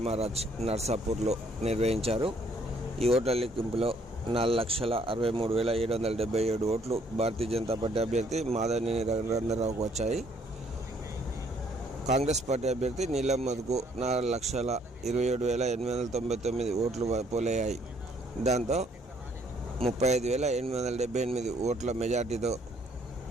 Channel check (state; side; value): normal; both; correlation 0.65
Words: నర్సాపూర్లో నిర్వహించారు. ఈ ఓట్ల లెక్కింపులో 4,63,777 ఓట్లు భారతీయ జనతా పార్టీ అభ్యర్థి మాధవనేని రఘునందనరావుకు వచ్చాయి. కాంగ్రెస్ పార్టీ అభ్యర్థి నీలం మధుకు 4,27,899 ఓట్లు పోలయ్యాయి. దాంతో 35,878 ఓట్ల మెజార్టీతో